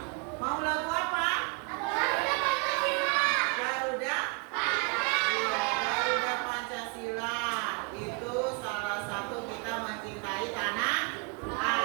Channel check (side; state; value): left; quieter; 32.7 dB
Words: Mau lagu apa? Garuda? Iya, Garuda Pancasila. Itu salah satu kita mencintai tanah